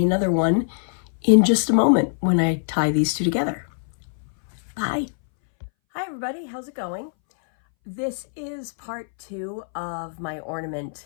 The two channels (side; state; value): right; silent; 62 dB below the other